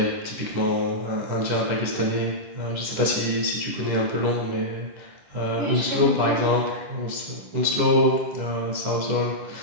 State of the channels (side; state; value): left; late; 10 ms